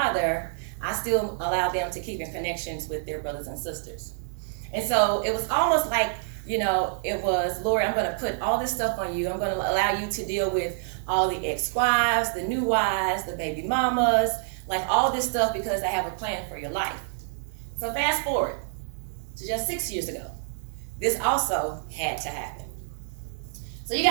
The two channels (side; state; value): left; silent; 59 dB below the other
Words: I still allow them to keep in connections with their brothers and sisters. And so it was almost like, it was, Lord, I'm going to put all this stuff on you. I'm going to allow you to deal with all the ex-wives, the new wives, the baby mamas, like all this stuff because I have a plan for your life. So fast forward to just 6 years ago. This also had to happen. So you